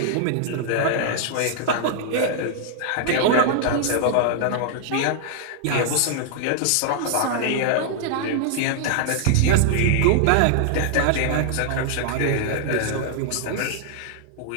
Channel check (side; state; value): both; different; correlation -0.01